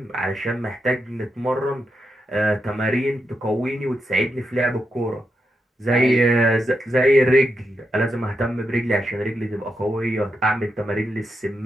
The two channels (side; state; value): both; normal; correlation 0.85